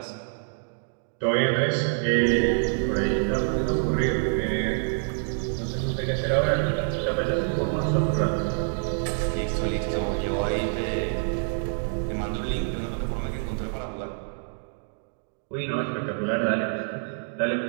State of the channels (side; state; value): left; silent; digital silence